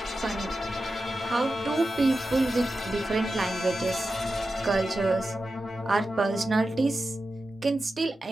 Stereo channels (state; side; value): normal; both; correlation 0.92